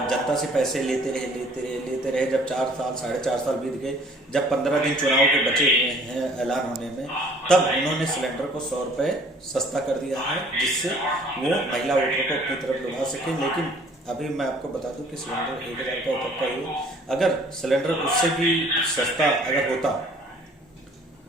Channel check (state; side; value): normal; both; correlation 0.55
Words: जनता से पैसे लेते रहे। जब 4 साल 4.5 साल बीत गए, जब 15 दिन चुनाव के बचे हुए हैं ऐलान होने में, तब उन्होंने सिलेंडर को 100 रुपये सस्ता कर दिया है, जिससे वो महिला वोटरों को अपनी तरफ लुभा सके। लेकिन अभी मैं आपको बता दूं कि सिलेंडर 1000 का तक का ही, अगर सिलेंडर उससे भी सस्ता अगर होता